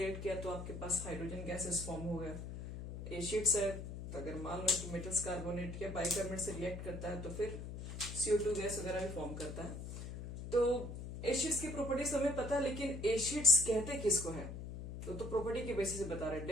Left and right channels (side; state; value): left; noise; hum, 8 dB below the sound